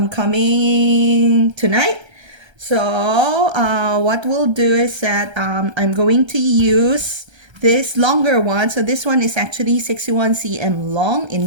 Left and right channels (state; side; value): late; left; 1.3 ms